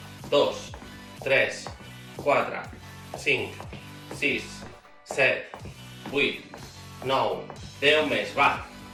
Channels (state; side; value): identical; both; correlation 1.00